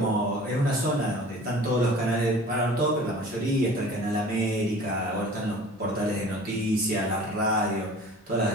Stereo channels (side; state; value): both; normal; correlation 0.44